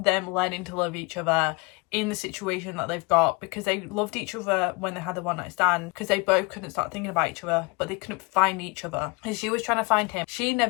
learning to love each other in the situation that they've got, because they loved each other when they had the one night stand, because they both couldn't start thinking about each other, but they couldn't find each other, and she was trying to find him. She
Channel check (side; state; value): right; quieter; 27.3 dB